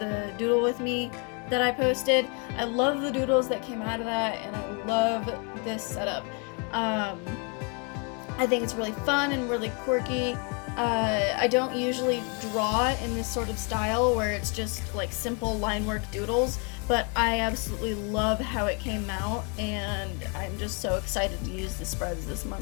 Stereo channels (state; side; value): quieter; right; 35.5 dB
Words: doodle with me that I posted. I love the doodles that came out of that, and I love this setup. I think it's really fun and really quirky. I don't usually draw in this sort of style where it's just like simple line work doodles, but I absolutely love how it came out, and I'm just so excited to use the spreads this